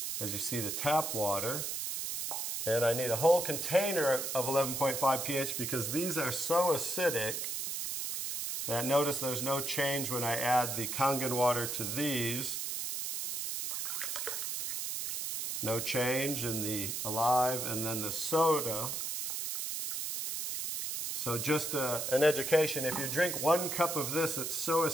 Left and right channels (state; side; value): noise; right; hiss, 3 dB below the sound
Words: as you see the tap water. And I need a whole container of 11.5 pH because these are so acidic that notice there's no change when I add the KanGen water to these. No change in the Alive, and then the soda. So just an education, if you drink 1 cup of this, it's so